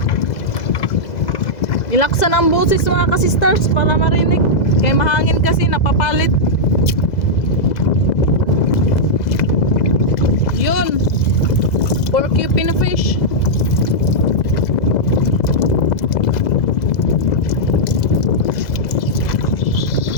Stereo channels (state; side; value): late; right; 2.0 ms